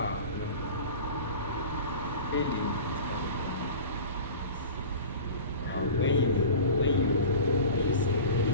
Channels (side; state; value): both; inverted; correlation -0.37